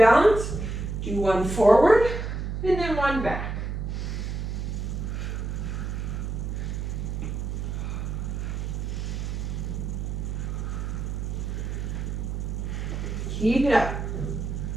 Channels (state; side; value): noise; right; hum, 3 dB below the sound